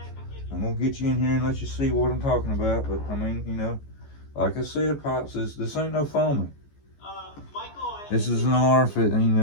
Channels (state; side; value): late; right; 14 ms